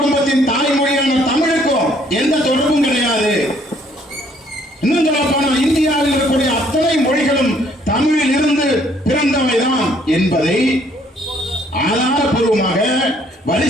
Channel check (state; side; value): normal; both; correlation 0.63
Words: தாய்மொழியான தமிழுக்கும் எந்த தொடர்பும் கிடையாது. இன்னும் சொல்ல போனால் இந்தியாவில் இருக்கக்கூடிய அத்தனை மொழிகளும் தமிழில் இருந்து பிறந்தவைதான் என்பதை ஆதாரபூர்வமாக